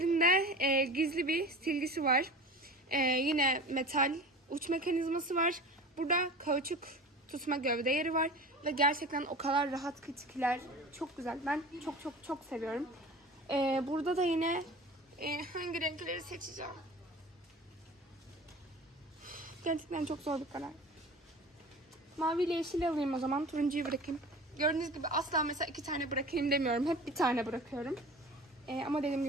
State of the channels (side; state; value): both; normal; correlation 0.37